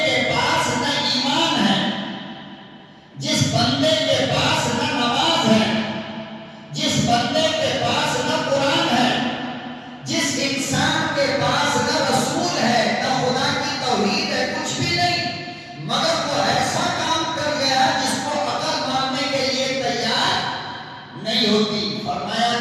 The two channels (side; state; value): both; identical; correlation 1.00